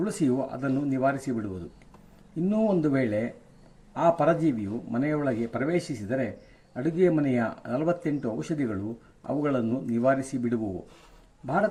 ಅದನ್ನು ನಿವಾರಿಸಿಬಿಡುವುದು. ಇನ್ನೂ ಒಂದು ವೇಳೆ ಆ ಪರಜೀವಿಯು ಮನೆಯೊಳಗೆ ಪ್ರವೇಶಿಸಿದರೆ ಅಡುಗೆ ಮನೆಯ 48 ಔಷಧಿಗಳು ಅವುಗಳನ್ನು ನಿವಾರಿಸಿ ಬಿಡುವುವು.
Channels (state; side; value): identical; both; correlation 1.00